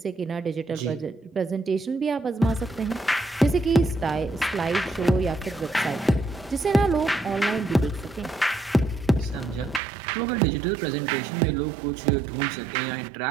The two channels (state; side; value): drops out; left; at 9.8 s